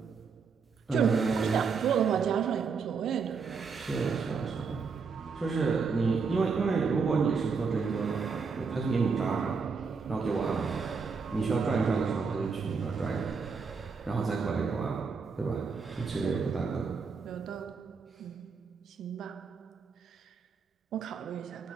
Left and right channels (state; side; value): quieter; left; 5.2 dB